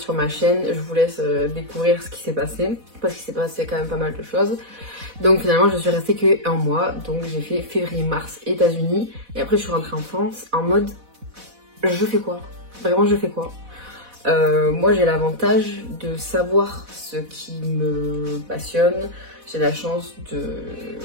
ma chaîne, je vous laisse découvrir ce qui s'est passé, parce qu'il s'est passé quand même pas mal de choses. Donc finalement, je suis restée que un mois. Donc j'ai fait février-mars États-Unis. Et après, je suis rentrée en France en mode, je fais quoi? Vraiment, je fais quoi? Moi j'ai l'avantage de savoir ce qui me passionne, j'ai la chance de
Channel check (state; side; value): late; left; 4.1 ms